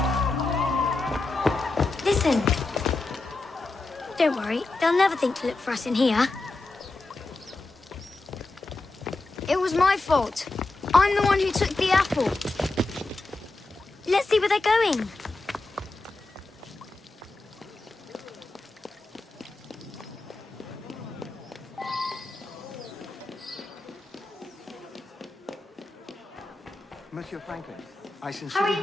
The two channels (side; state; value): right; quieter; 3.2 dB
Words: Listen. Don't worry, they'll never think to look for us in here. It was my fault. I'm the one who took the apple. Let's see where they're going. Monsieur Franklin, I sincerely